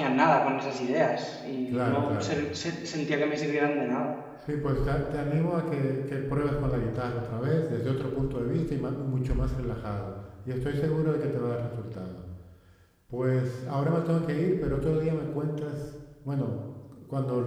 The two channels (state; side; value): identical; both; correlation 1.00